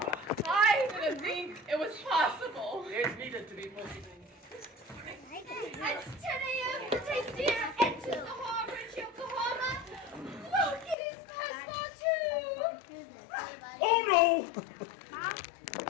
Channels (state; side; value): drops out; right; at 11.0 s